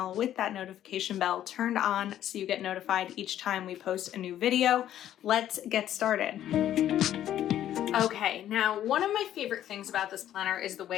with that notification bell turned on so you get notified each time we post a new video. Let's get started. Okay, now one of my favorite things about this planner is the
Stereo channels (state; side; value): quieter; right; 11.6 dB